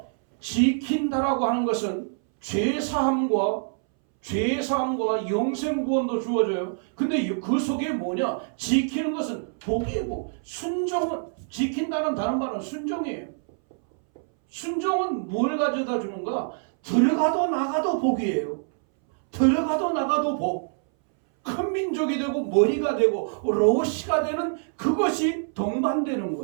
지킨다라고 하는 것은 죄사함과 영생구원도 주어져요. 근데 그 속에 뭐냐? 지키는 것은 복이고 순종은 지킨다는 다른 말은 순종이에요. 순종은 뭘 가져다 주는가? 들어가도 나가도 복이에요. 들어가도 나가도 복. 큰 민족이 되고 머리가 되고 로시가 되는 그것이 동반되는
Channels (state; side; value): silent; left; 61 dB below the other